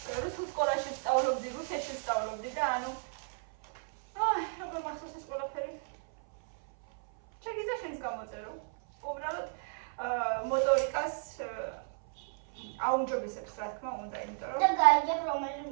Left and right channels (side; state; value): left; silent; 55 dB below the other